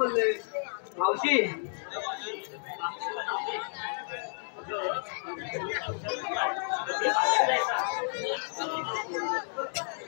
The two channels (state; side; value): silent; right; digital silence